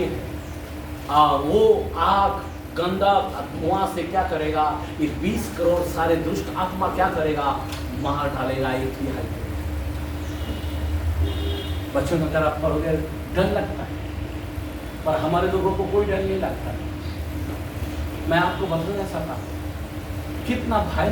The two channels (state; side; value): identical; both; correlation 1.00